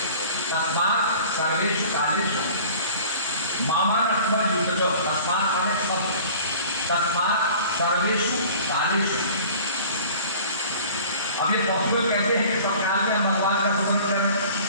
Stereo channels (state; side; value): inverted; both; correlation -0.45